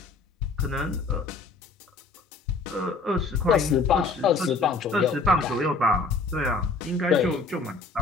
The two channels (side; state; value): right; quieter; 3.9 dB